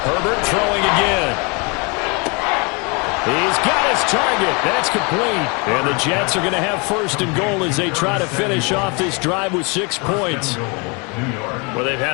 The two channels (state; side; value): quieter; right; 31.3 dB